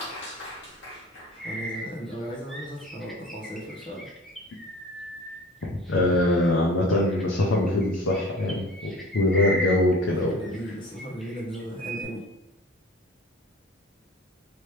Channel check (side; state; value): both; normal; correlation 0.42